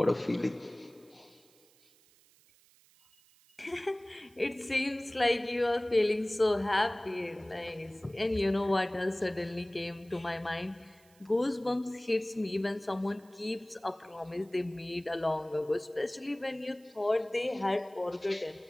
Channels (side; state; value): right; noise; hiss, 29 dB below the sound